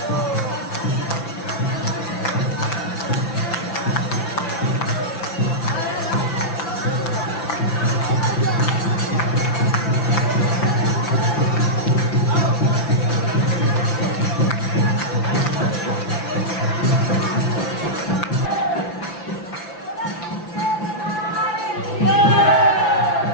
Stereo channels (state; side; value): late; right; 5.9 ms